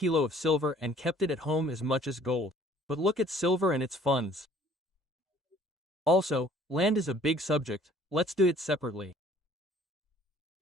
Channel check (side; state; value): both; normal; correlation 0.55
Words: of silver and kept it at home as much as gold. But look at silver and its funds. Also, land is a big subject. Let's do it separately.